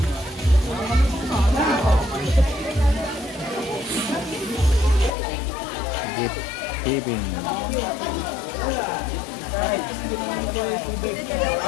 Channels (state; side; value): drops out; right; at 5.1 s